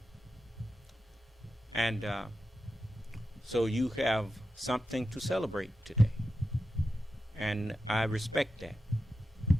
And so you have something to celebrate today. And I respect that.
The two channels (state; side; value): normal; both; correlation 0.90